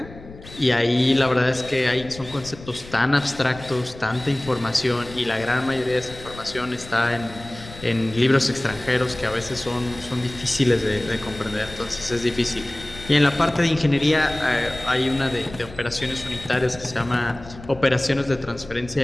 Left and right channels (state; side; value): noise; left; rumble, 17 dB below the sound